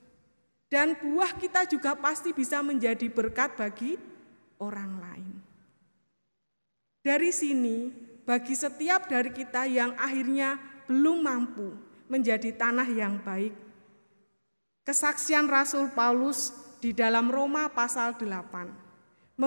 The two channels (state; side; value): inverted; both; correlation -1.00